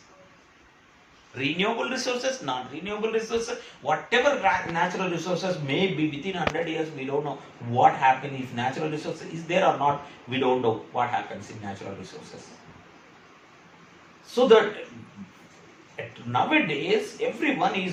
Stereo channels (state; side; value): identical; both; correlation 1.00